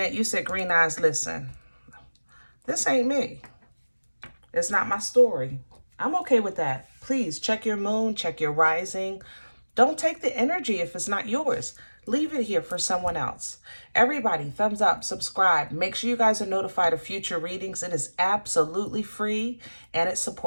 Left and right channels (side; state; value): both; inverted; correlation -1.00